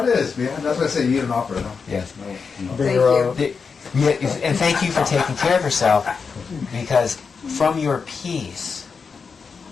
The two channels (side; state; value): right; quieter; 5.4 dB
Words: it is, man. That's why I say you eat an opera, though. Yes. Thank you. And thank you for taking care of yourself, because from your peace